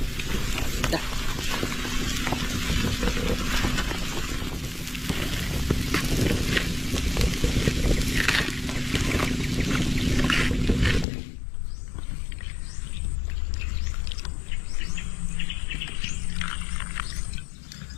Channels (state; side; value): drops out; right; at 11.1 s